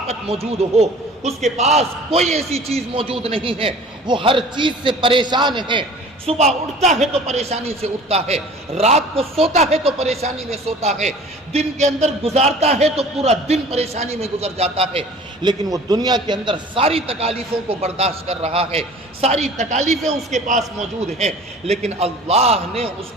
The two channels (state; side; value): normal; both; correlation 0.45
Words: موجود ہو، اس کے پاس کوئی ایسی چیز موجود نہیں ہے، وہ ہر چیز سے پریشان ہے. صبح اٹھتا ہے تو پریشانی سے اٹھتا ہے، رات کو سوتا ہے تو پریشانی میں سوتا ہے، دن کے اندر گزارتا ہے تو پورا دن پریشانی میں گزر جاتا ہے. لیکن وہ دنیا کے اندر ساری تکالیفوں کو برداشت کر رہا ہے، ساری تکالیفیں اس کے پاس موجود ہیں، لیکن اللہ نے اس